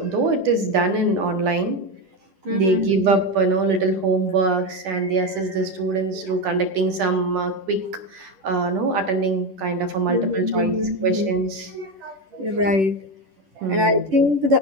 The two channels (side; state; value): left; late; 11 ms